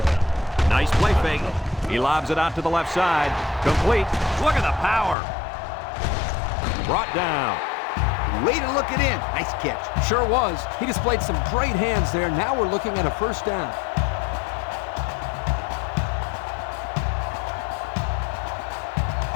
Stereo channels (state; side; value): drops out; right; at 5.2 s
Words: Nice play fake. He lobs it out to the left side. Complete. Look at the power. Brought down. Way to look it in. Nice catch. Sure was. He displayed some great hands there. Now we're looking at a first down.